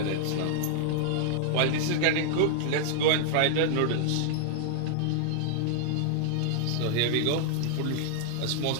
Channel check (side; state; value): both; different; correlation -0.01